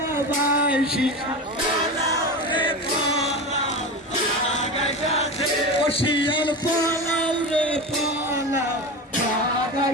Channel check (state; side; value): normal; both; correlation 0.25